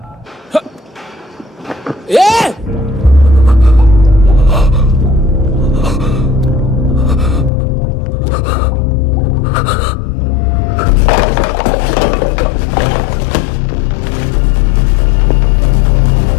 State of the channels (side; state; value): right; drops out; at 7.5 s